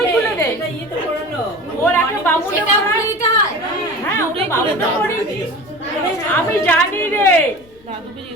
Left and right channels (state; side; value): noise; left; rumble, 29 dB below the sound